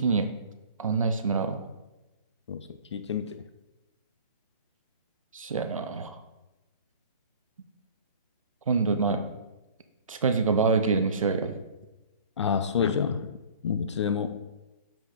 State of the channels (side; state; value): both; inverted; correlation -0.44